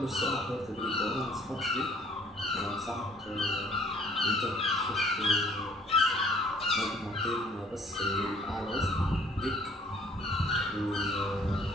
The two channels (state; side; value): normal; both; correlation 0.58